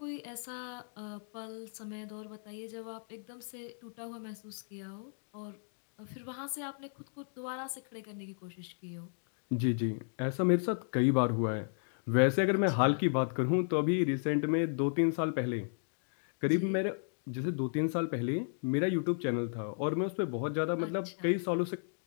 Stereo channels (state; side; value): silent; right; digital silence